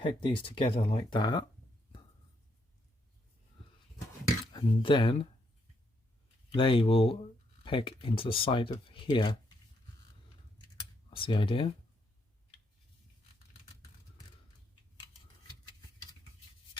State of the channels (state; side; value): normal; both; correlation 0.76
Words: these together like that, and then they will peg into the side of here. That's the idea.